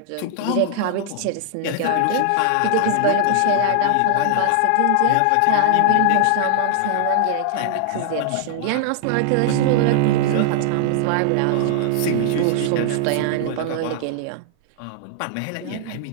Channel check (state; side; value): different; both; correlation -0.01